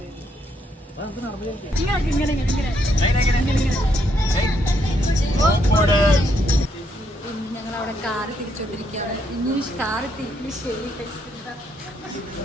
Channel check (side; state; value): both; normal; correlation 0.75